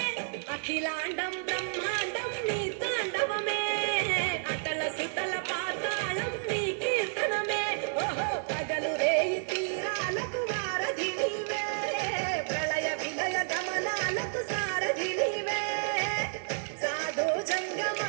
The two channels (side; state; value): left; silent; digital silence